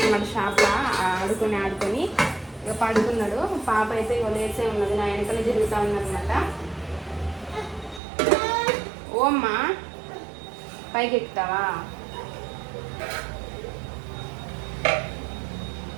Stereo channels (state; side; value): drops out; left; at 8.0 s